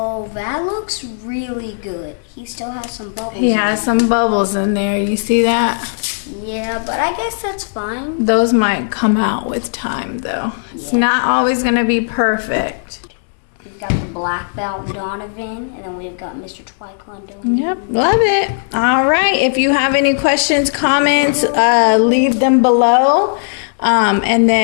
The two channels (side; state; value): right; silent; digital silence